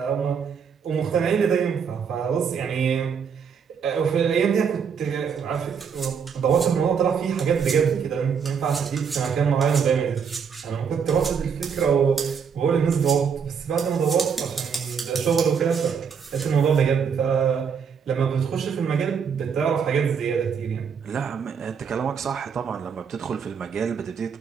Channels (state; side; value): quieter; left; 6.7 dB